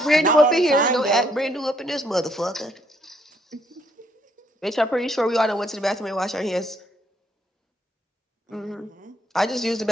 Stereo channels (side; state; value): both; normal; correlation 0.70